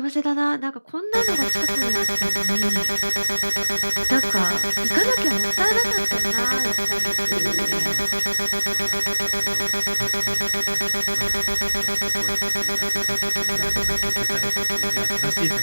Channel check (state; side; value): inverted; both; correlation -1.00